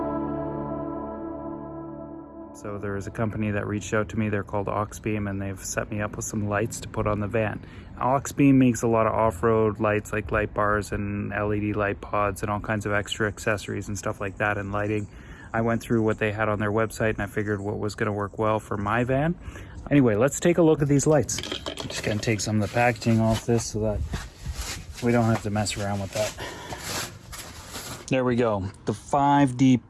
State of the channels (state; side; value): identical; both; correlation 1.00